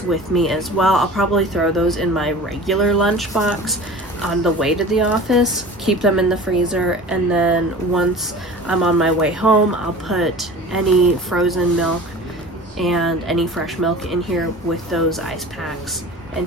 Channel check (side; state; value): both; normal; correlation 0.39